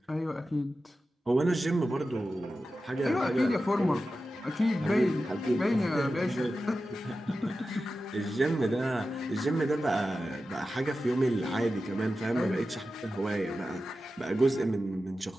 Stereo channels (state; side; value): normal; both; correlation 0.92